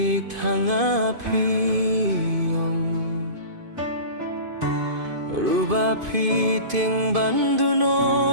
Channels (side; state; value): left; late; 2.5 ms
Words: thangapi Rubapi ting